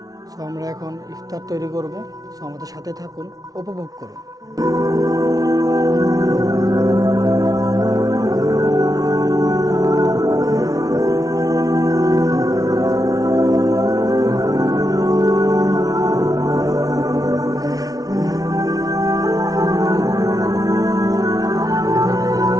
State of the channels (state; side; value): late; left; 0.18 ms